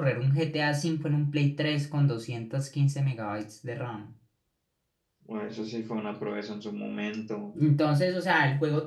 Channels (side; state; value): both; identical; correlation 1.00